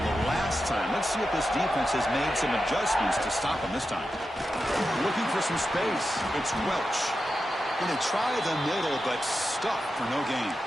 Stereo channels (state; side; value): normal; both; correlation 0.90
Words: the last time. Let's see if this defense has made some adjustments to stop them this time. Looking for some space. It's Welch. Going to try the middle, but stuck for no gain.